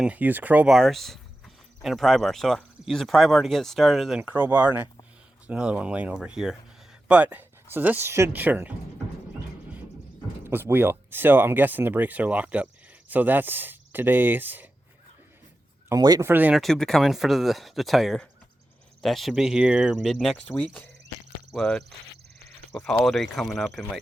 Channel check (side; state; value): both; normal; correlation 0.91